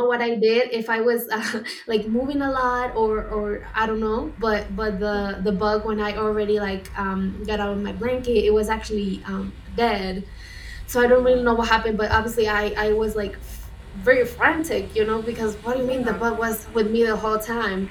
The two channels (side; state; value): both; identical; correlation 1.00